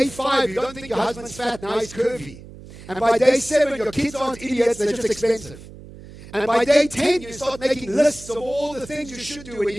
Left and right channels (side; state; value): right; noise; hum, 17 dB below the sound